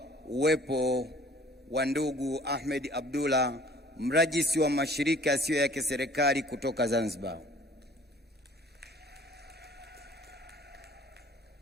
uwepo wa ndugu Ahmed Abdullah, mrajisi wa mashirika yasiyo ya kiserikali kutoka Zanzibar.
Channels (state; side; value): normal; both; correlation 0.52